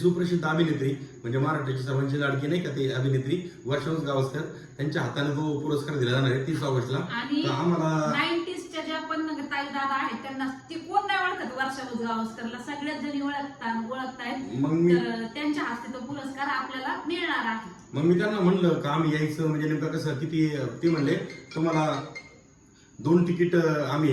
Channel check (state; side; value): identical; both; correlation 1.00